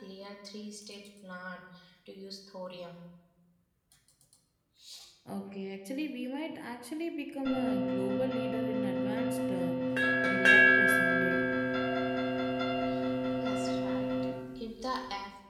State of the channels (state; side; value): identical; both; correlation 1.00